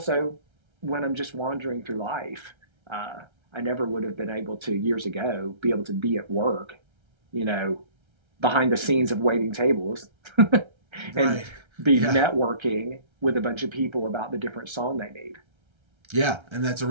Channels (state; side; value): late; left; 1.3 ms